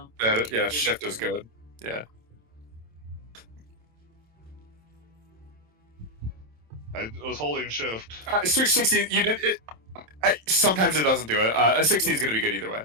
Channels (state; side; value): late; left; 27 ms